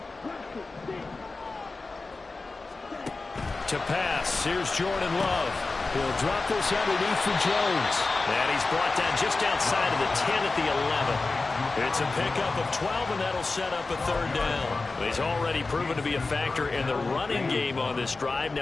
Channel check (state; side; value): quieter; right; 3.7 dB